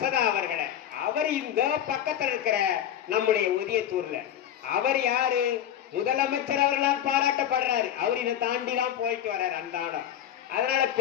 அவர்களை. அவர் இந்த பக்கத்தில் இருக்கிற நம்முடைய ஒதியத்தூர்ல அவர் யாரு? முதலமைச்சர் அவர்களால் பாராட்டப்படுறாரு. அவர் இதை தாண்டி தான் போயிட்டு வர்றாரு அந்த ஆடம். அதனால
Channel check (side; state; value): right; quieter; 10.5 dB